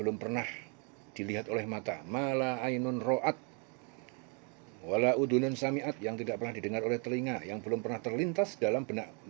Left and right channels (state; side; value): quieter; left; 37.1 dB